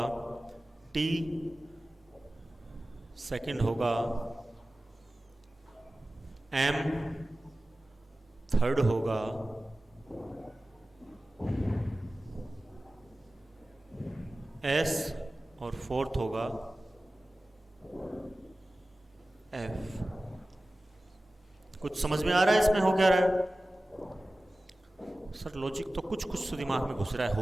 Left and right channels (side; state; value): both; normal; correlation 0.96